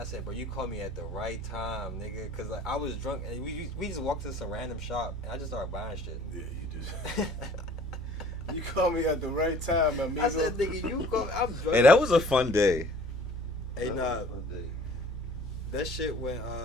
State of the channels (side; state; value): both; normal; correlation 0.51